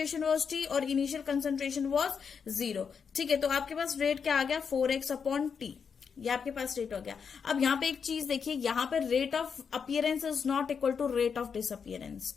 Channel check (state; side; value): quieter; right; 6.4 dB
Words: वाज t और इनिशियल कंसंट्रेशन वाज 0। ठीक है, तो आपके पास रेट क्या आ गया, 4x अपॉन टी, ये आपके पास रेट हो गया। अब यहाँ पे एक चीज देखिए, यहाँ पे rate of appearance is not equal to rate of disappearance.